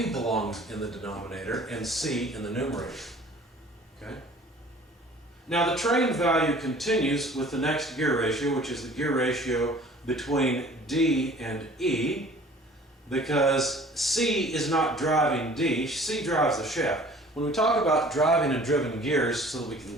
belongs in the denominator and C in the numerator. Okay? Now the train value continues with the next gear ratio, which is the gear ratio between D and E, because C is not driving D, C drives the shaft. When we talk about driving and driven gears, so that we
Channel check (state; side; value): normal; both; correlation 0.50